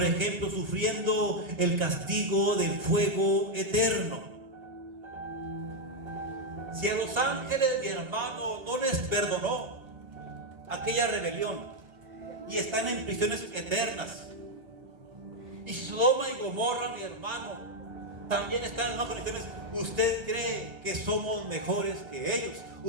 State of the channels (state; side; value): late; left; 1.3 ms